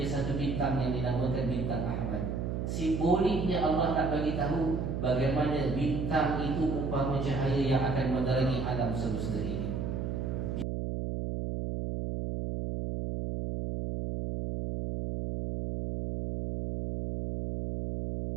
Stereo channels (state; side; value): noise; right; hum, 2 dB below the sound